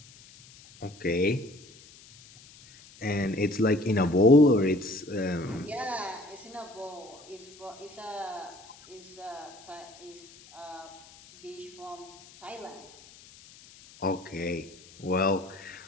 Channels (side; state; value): left; noise; hiss, 22 dB below the sound